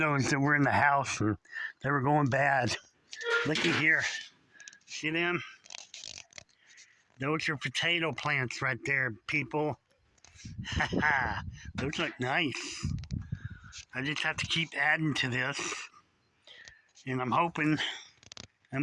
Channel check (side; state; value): both; identical; correlation 1.00